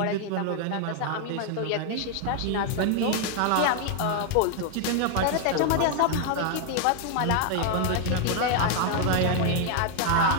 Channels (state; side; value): different; both; correlation 0.00